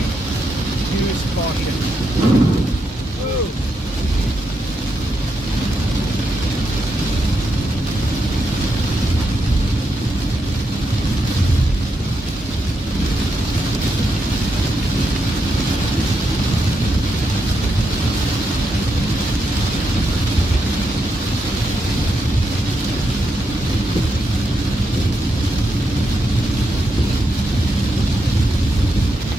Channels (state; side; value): normal; both; correlation 0.82